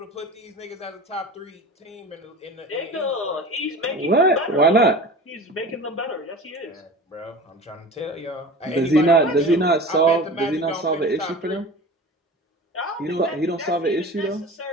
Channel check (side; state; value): both; normal; correlation 0.36